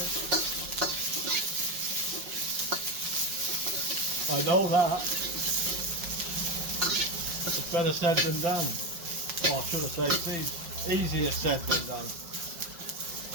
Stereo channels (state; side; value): late; left; 5.5 ms